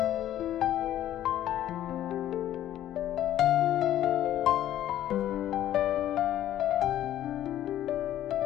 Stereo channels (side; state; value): right; quieter; 12.3 dB